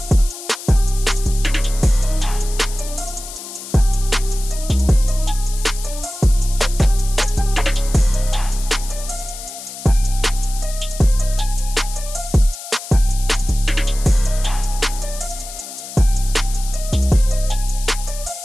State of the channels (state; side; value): noise; left; hiss, 12 dB below the sound